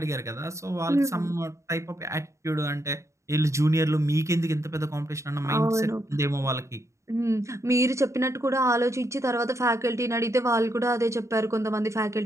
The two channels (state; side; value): late; left; 0.14 ms